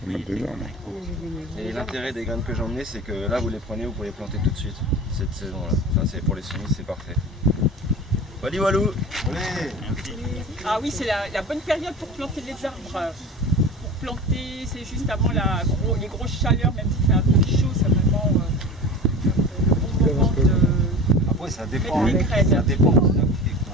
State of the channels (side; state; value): both; normal; correlation 0.33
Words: mettre des arbres. Et l'intérêt des graines que j'ai emmenées, c'est que là vous les prenez, vous pouvez les planter tout de suite, cette saison-là. Enfin, c'est pour les semis, c'est parfait. Wally Walou. Ah oui, c'est la bonne période pour planter les arbres. Pour planter, c'est juste avant les grosses chaleurs, même si c'est un peu chaud, c'est vraiment le bon moment de... Après, ça dépend. Mettre les graines. Ça dépend de la boutique.